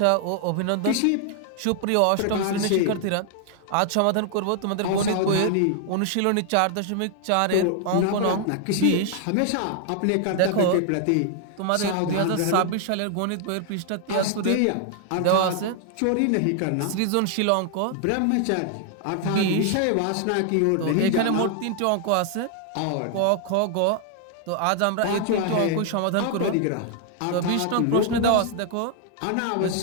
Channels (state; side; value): different; both; correlation 0.00